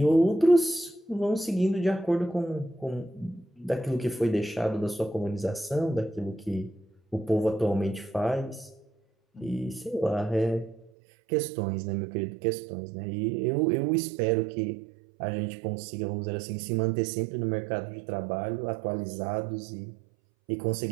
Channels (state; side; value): drops out; left; at 10.9 s